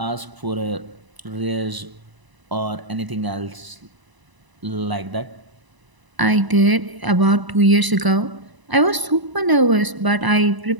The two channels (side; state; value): left; late; 1.0 ms